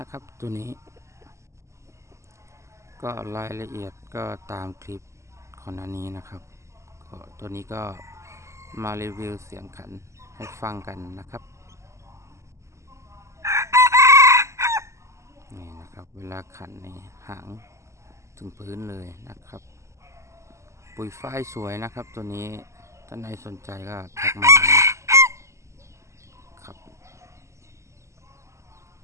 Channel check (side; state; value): left; late; 0.14 ms